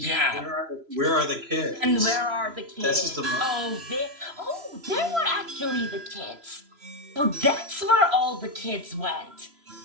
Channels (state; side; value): late; left; 3.0 ms